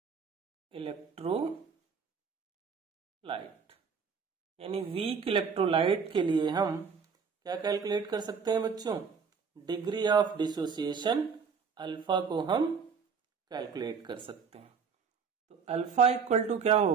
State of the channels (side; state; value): left; quieter; 5.9 dB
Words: electrolyte यानी वीक इलेक्ट्रोलाइट के लिए हम क्या कैलकुलेट कर सकते हैं बच्चों? डिग्री ऑफ डिसोसिएशन अल्फा को हम कैलकुलेट कर सकते हैं। तो अल्फा इक्वल टू क्या